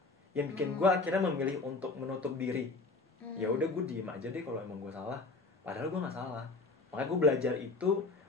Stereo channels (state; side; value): quieter; right; 3.6 dB